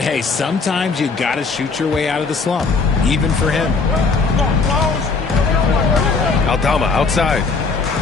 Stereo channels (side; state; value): right; quieter; 4.4 dB